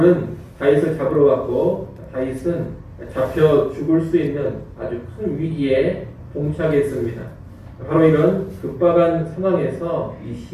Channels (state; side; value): identical; both; correlation 1.00